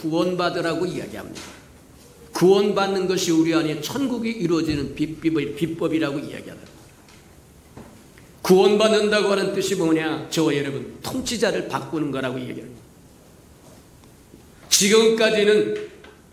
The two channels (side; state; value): both; identical; correlation 1.00